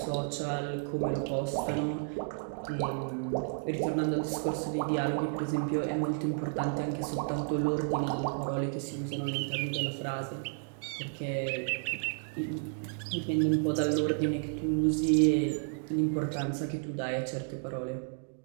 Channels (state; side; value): silent; left; digital silence